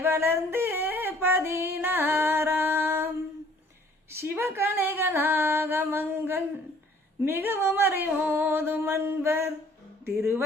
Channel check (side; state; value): both; normal; correlation 0.57